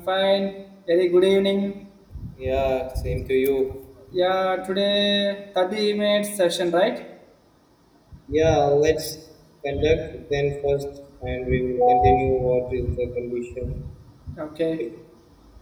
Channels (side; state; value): both; identical; correlation 1.00